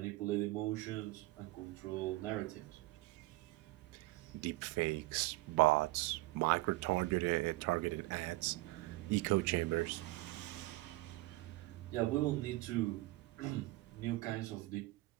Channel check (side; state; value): left; quieter; 20.2 dB